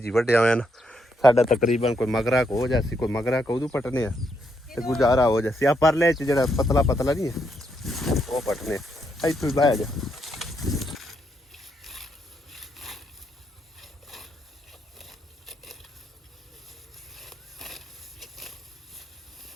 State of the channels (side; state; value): both; normal; correlation 0.77